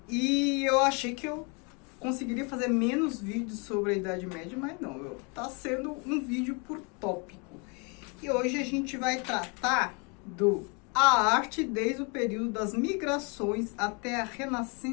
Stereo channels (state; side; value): quieter; right; 33.0 dB